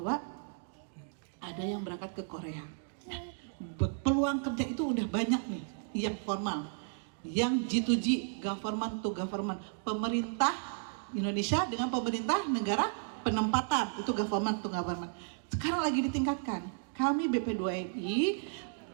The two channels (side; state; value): left; silent; digital silence